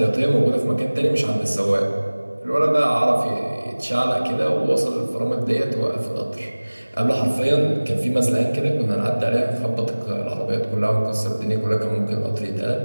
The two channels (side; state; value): both; inverted; correlation -1.00